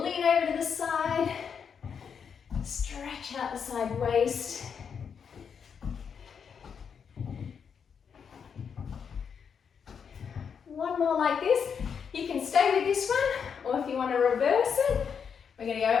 over to the side. Stretch out the side waist. One more like this. You can stay with this one, or if you want to reverse it, we're going to go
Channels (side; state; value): right; quieter; 6.8 dB